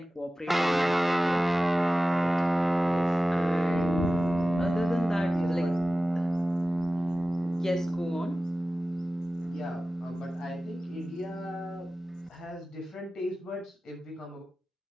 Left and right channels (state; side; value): normal; both; correlation 0.96